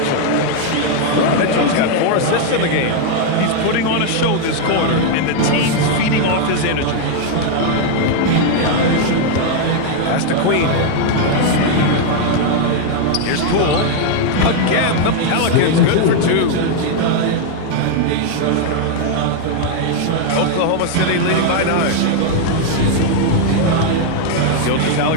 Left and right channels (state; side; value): different; both; correlation 0.00